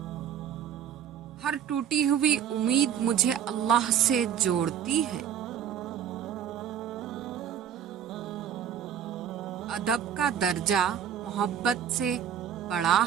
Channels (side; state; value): left; quieter; 9.1 dB